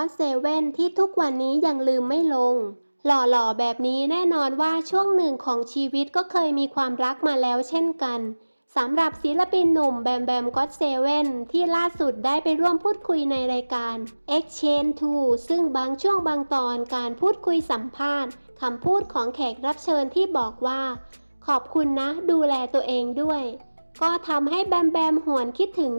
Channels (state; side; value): inverted; both; correlation -1.00